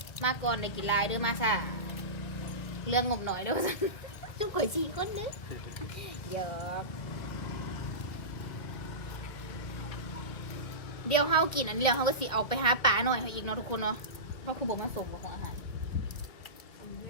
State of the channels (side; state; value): right; late; 2.1 ms